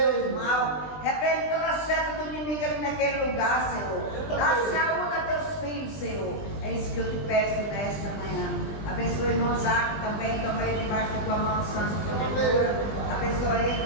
o mal. Repreende toda a seta do inimigo ali naquele lugar, Senhor. Dá saúde a teus filhos, Senhor. É isso que eu te peço nesta manhã. Abençoa o irmão Zaco também, toma ele debaixo da tua mão santa e protetora. Abençoa ele que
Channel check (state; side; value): late; right; 20 ms